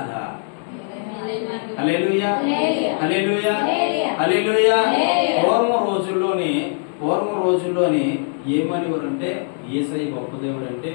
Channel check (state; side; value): silent; right; digital silence